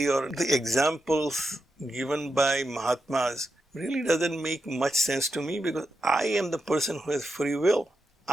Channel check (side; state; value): both; normal; correlation 0.87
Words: or the examples given by Mahatmas really doesn't make much sense to me, because I am the person who has free will.